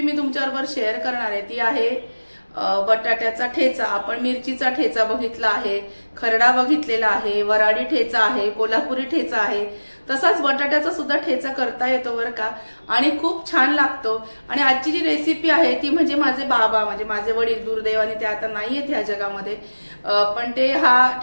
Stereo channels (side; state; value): both; inverted; correlation -1.00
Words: मी तुमच्याबरोबर शेअर करणार आहे ती आहे बटाट्याचा ठेचा। आपण मिरचीचा ठेचा बघितला आहे, खरडा बघितलेला आहे, वराडी ठेचा आहे, कोल्हापुरी ठेचा आहे, तसाच बटाट्याचा सुद्धा ठेचा करता येतो बरं का, आणि खूप छान लागतो। आणि आजची जी रेसिपी आहे ती म्हणजे माझे बाबा म्हणजे माझे वडील दुर्दैवाने ते आता नाहीयेत ह्या जगामध्ये, पण ते हा